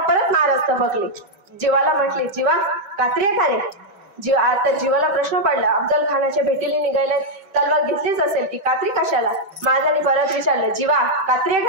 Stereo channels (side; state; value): left; late; 5.3 ms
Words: महाराज थबकले. जीवाला म्हटले, जीवा कात्री आहे का रे? आता जीवाला प्रश्न पडला. अफजल खानाच्या भेटीला निघायला तलवार घेतलीच असेल की कात्री कशाला? महाराजांनी परत विचारलं, जीवा कात्री आहे